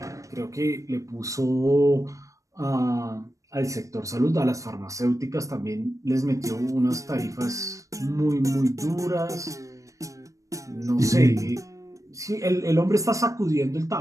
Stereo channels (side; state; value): left; late; 0.16 ms